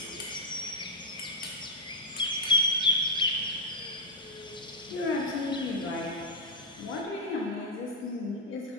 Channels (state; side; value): normal; both; correlation -0.03